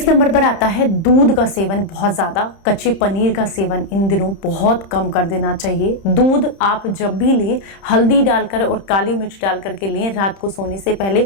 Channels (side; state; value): right; late; 30 ms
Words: नंबर पर आता है दूध दूध का सेवन बहुत ज़्यादा, कच्चे पनीर का सेवन इन दिनों बहुत कम कर देना चाहिए। दूध आप जब भी लें हल्दी डालकर और काली मिर्च डाल करके लें, रात को सोने से पहले,